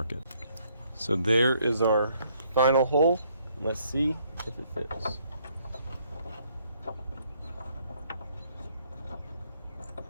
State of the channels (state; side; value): inverted; both; correlation -0.67